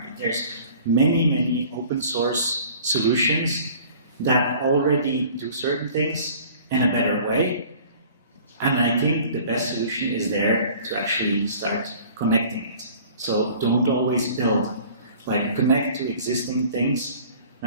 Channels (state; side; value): inverted; both; correlation -0.48